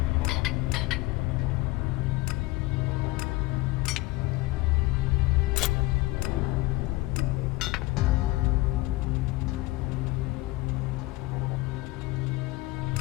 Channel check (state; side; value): quieter; right; 20.3 dB